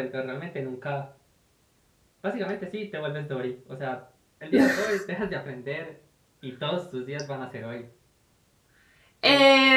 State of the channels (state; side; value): identical; both; correlation 1.00